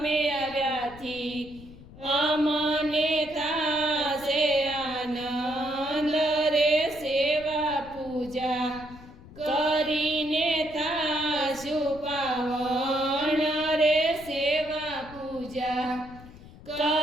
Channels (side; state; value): left; noise; rumble, 18 dB below the sound